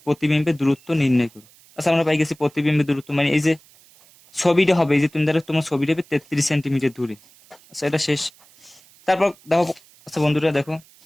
প্রতিবিম্বের দূরত্ব নির্ণয় করো। আচ্ছা আমরা পাই গেছি প্রতিবিম্বের দূরত্ব মানে এই যে ছবিটা হবে, এই যে তুমি ধরো তোমার ছবিটা হবে 33 সেন্টিমিটার দূরে। আচ্ছা এটা শেষ। তারপর দেখো আচ্ছা বন্ধুরা দেখো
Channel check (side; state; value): right; noise; hiss, 27 dB below the sound